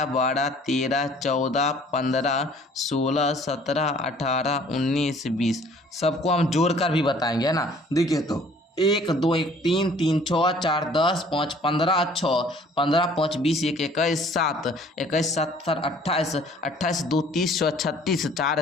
12 13 14 15 16 17 18 19 20, सबको हम जोड़कर भी बताएंगे, है ना। देखिए तो 1 2 1 3 3 6 4 10 5 15 6 15 5 20 1 21 7 21 7 28 28 2 30 36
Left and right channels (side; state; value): both; normal; correlation 0.55